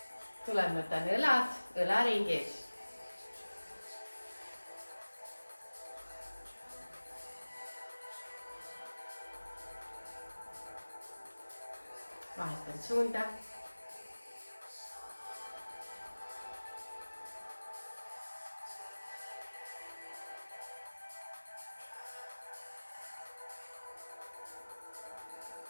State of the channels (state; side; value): inverted; both; correlation -1.00